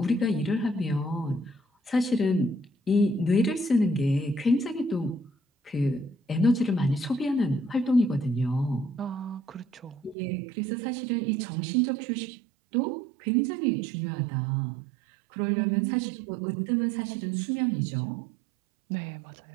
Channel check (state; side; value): drops out; left; at 10.2 s